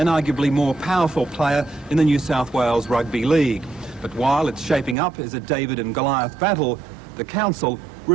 arguably more powerful player in the New South Wales Rugby League. But while it's shaping up as a David and Goliath battle, the council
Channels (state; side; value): drops out; left; at 5.0 s